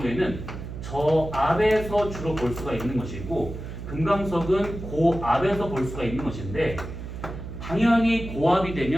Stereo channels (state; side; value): noise; right; hum, 9 dB below the sound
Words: 저압에서 주로 볼 수가 있는 것이고 금강석은 고압에서 볼 수가 있는 것인데 당연히 고압이